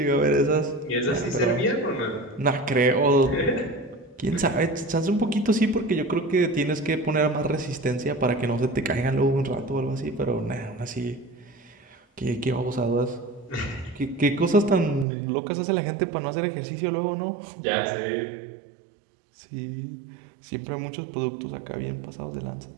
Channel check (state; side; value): drops out; left; at 15.1 s